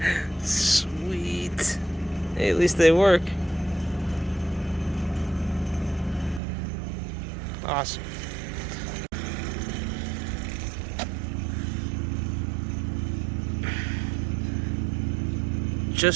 Sweet. Hey, at least they work. Awesome.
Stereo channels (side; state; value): left; drops out; at 6.4 s